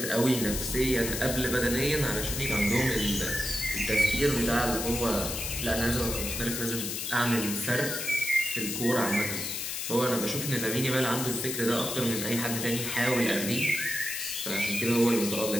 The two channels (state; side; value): noise; left; hiss, 4 dB below the sound